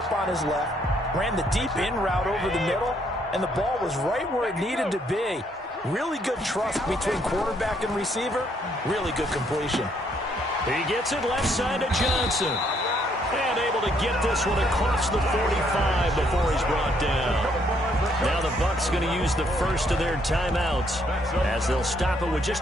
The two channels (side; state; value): both; normal; correlation 0.70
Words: on his left, ran the deep in route over the middle, and the ball was right where it needed to be. Really good trust between quarterback and receiver. Really good completion. He gets it left side to Johnson. And able to get this one across the 45 before he's brought down. Now the Bucs going to use the first of their timeouts as they'll stop it with